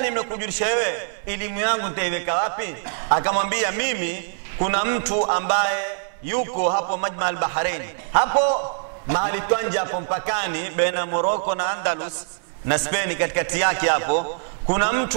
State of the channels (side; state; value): left; silent; 63 dB below the other